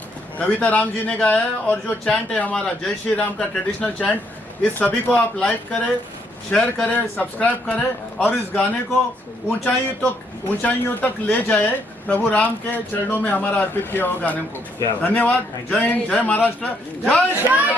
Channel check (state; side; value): normal; both; correlation 0.72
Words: कविता राम जी ने गाया है, और जो चैंट है हमारा जय श्री राम का ट्रेडिशनल चैंट, इस सभी को आप लाइक करें, शेयर करें, सब्सक्राइब करें, और इस गाने को ऊंचाइयों तक ले जाए, प्रभु राम के चरणों में हमारा अर्पित किया हुआ गाने को। धन्यवाद। जय हिंद, जय महाराष्ट्र, जय श्री